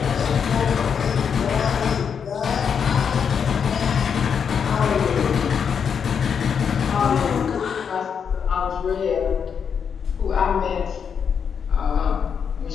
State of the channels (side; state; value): right; quieter; 7.0 dB